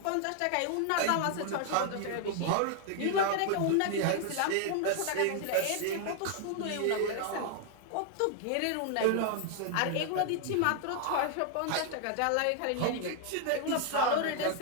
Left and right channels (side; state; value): both; different; correlation 0.00